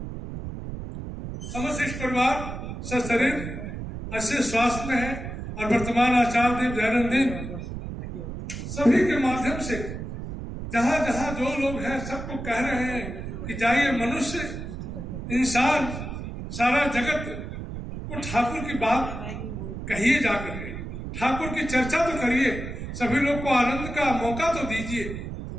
समस्त परिवार सशरीर अच्छे स्वास्थ्य में है और वर्तमान आचार्य देव दैनंदिन सभी के माध्यम से जहां जहां जो लोग हैं सबको कह रहे हैं कि जाइए, मनुष्य, इंसान, सारा जगत को ठाकुर की बात कहिए, जाकर के ठाकुर की चर्चा तो करिए, सभी लोग को आनंद का मौका तो दीजिए।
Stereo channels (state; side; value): noise; right; rumble, 7 dB below the sound